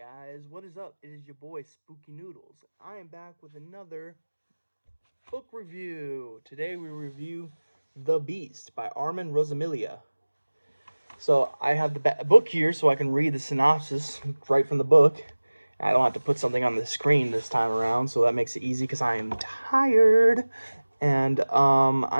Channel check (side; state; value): both; inverted; correlation -1.00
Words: What is up? It is your boy Spooky Noodles. I am back with another book review. Today we review The Beast by Armand Rosamilia. So I have the book here so I can read the synopsis right from the book. I don't have to put something on the screen this time around, so that makes it easy because I am tired and